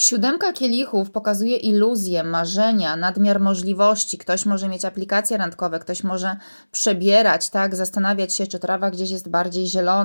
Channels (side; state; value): both; inverted; correlation -1.00